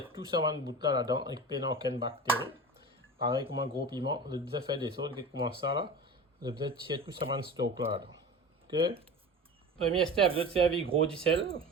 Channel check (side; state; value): both; normal; correlation 0.32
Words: tout ça dans le bout là-dedans et qui n'ont aucune bactérie. Pareil comme un gros piment. Vous devez faire des autres qui commencent ça là. Vous devez tirer tout ça dans le stock là-dedans. Ok? Premier step, vous devez servir gros du sel.